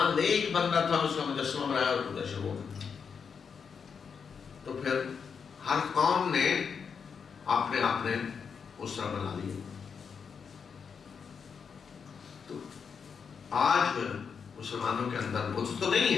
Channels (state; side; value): quieter; right; 6.3 dB